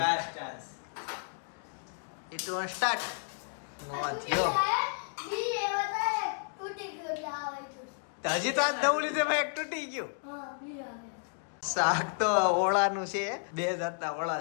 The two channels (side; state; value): right; silent; 56 dB below the other